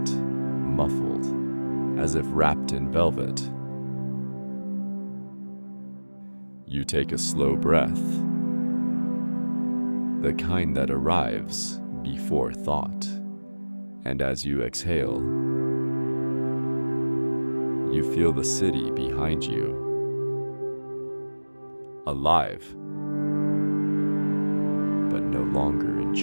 muffled, as if wrapped in velvet. You take a slow breath, the kind that arrives before thought, and as you exhale, you feel the city behind you, alive, but no longer in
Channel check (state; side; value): inverted; both; correlation -1.00